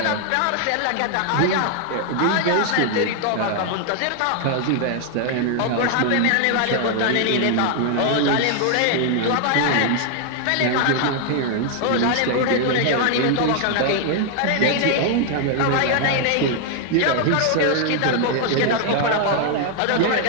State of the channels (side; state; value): both; different; correlation 0.00